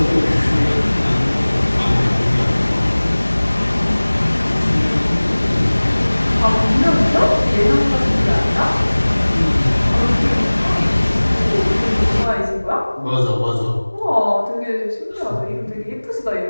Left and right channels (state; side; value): inverted; both; correlation -1.00